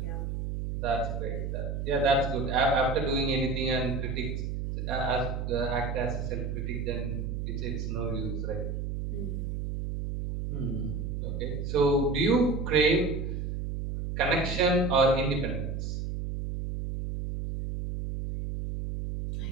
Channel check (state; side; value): noise; right; hum, 3 dB below the sound